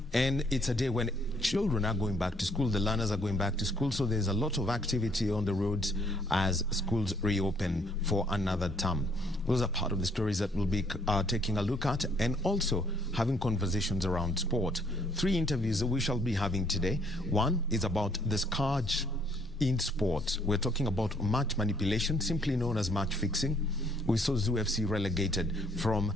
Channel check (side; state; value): both; normal; correlation 0.65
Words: and it's a day when children are going back to school, the learners are going back to school, so there's a lot of activity on the roads as schools reopen for another term. Those are part of the stories that we'll be taking a look at and also having conversations around sport. 3 interviews that we shall be having today. One is about the scourge in sport. We're talking about match manipulation, simply known as match fixing. We saw Zoo FC relegated from